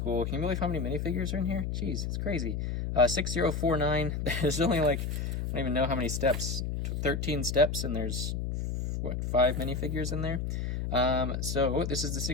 Can you believe how many minifigures are in here? Jeez, it's crazy. 6049. There's only like, I don't even know how many steps. 13 steps, and there's what, 5 minifigures in there. So this is the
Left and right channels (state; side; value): noise; left; hum, 2 dB below the sound